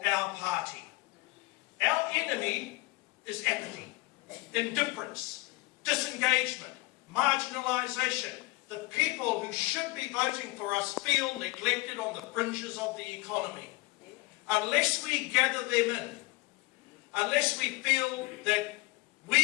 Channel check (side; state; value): right; quieter; 22.3 dB